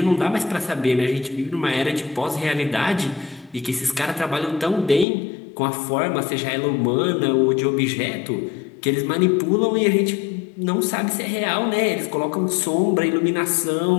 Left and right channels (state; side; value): drops out; right; at 5.1 s